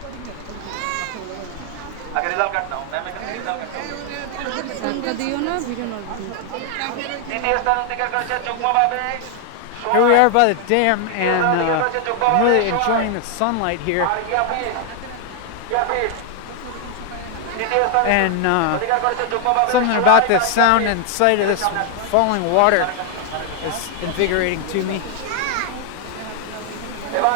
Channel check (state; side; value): different; both; correlation 0.00